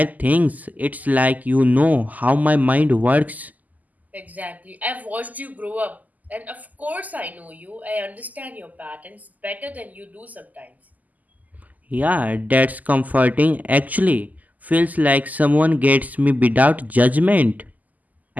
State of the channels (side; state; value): left; late; 0.080 ms